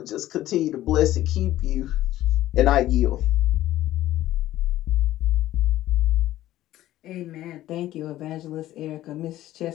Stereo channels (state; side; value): quieter; right; 14.4 dB